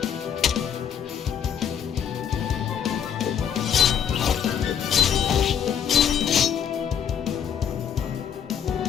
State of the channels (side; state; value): right; quieter; 8.4 dB